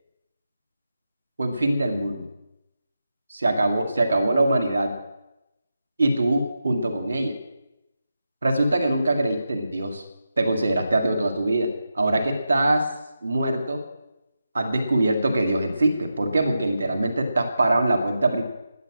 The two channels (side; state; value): both; inverted; correlation -0.89